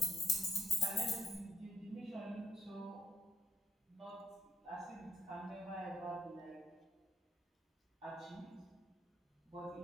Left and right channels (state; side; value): normal; both; correlation 0.77